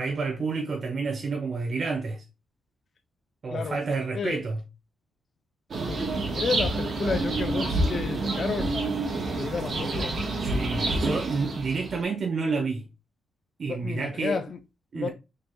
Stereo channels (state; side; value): normal; both; correlation 0.81